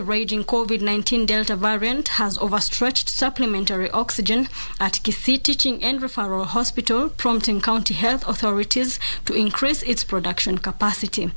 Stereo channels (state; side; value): inverted; both; correlation -1.00